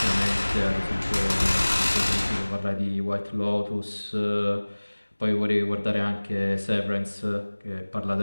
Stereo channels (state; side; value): inverted; both; correlation -1.00